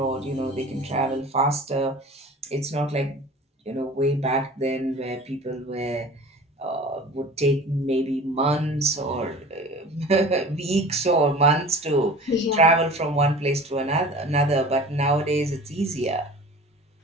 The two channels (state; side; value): normal; both; correlation 0.41